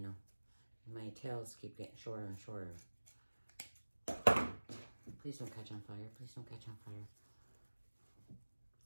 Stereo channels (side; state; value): both; inverted; correlation -1.00